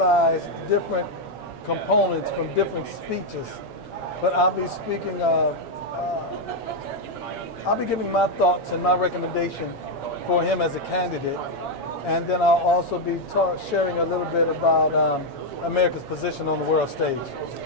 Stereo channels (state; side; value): late; right; 7.2 ms